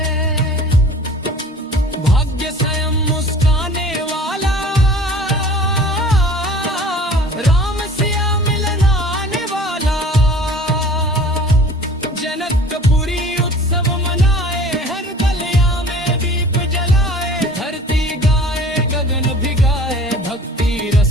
भाग्य स्वयं मुस्काने वाला, राम सिया मिल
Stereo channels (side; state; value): both; normal; correlation 0.46